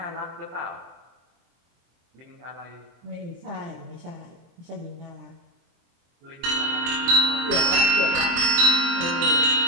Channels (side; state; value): left; late; 24 ms